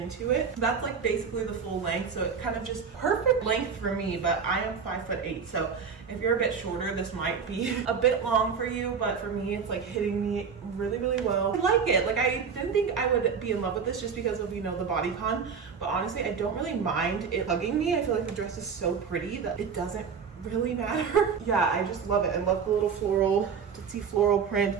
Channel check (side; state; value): left; quieter; 6.2 dB